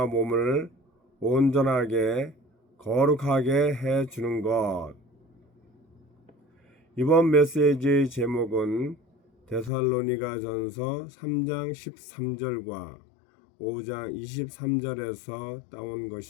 몸을 온전하게 거룩하게 해주는 것. 이번 메시지의 제목은 데살로니가전서 3장 13절과 5장 23절에서 따온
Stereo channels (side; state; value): right; drops out; at 9.7 s